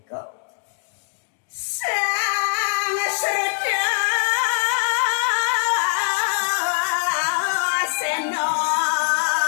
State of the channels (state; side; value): silent; right; digital silence